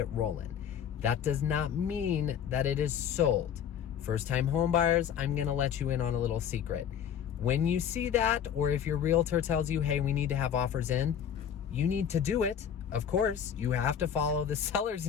rolling. That does not mean that it is sold. First-time home buyers, I'm gonna let you in on a little secret. When you see that, or if your realtor tells you, hey, we need to have offers in, you need to do it. Of course, you have to follow the seller's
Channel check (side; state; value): right; quieter; 8.6 dB